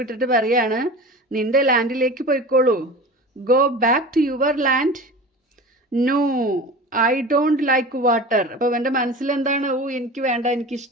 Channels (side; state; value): both; normal; correlation 0.34